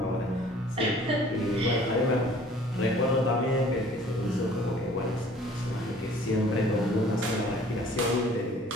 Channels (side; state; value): both; normal; correlation 0.52